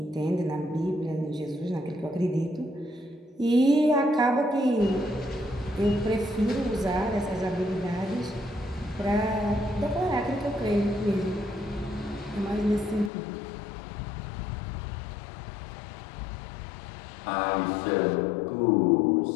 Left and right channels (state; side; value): drops out; right; at 13.1 s